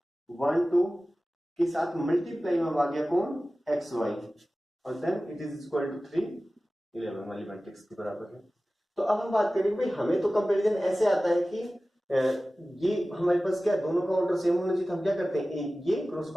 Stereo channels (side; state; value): both; normal; correlation 0.96